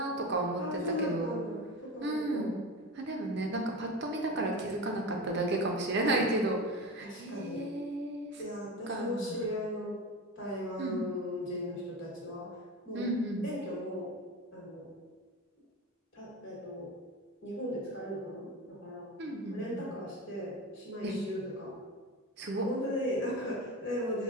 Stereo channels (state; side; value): normal; both; correlation 0.26